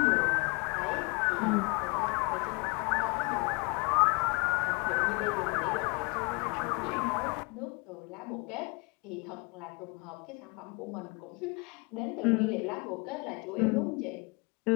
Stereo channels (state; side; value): quieter; right; 30.4 dB